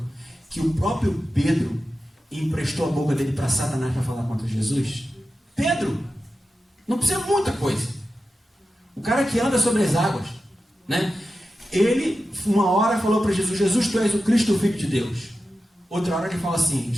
que o próprio Pedro emprestou a boca dele para Satanás para falar contra Jesus? Pedro, não precisa muita coisa. O cara que anda sobre as águas, Ele, uma hora, falou para Jesus: Jesus, tu és o Cristo, o Filho de Deus. Outra hora ele fala assim:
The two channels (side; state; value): both; normal; correlation 0.92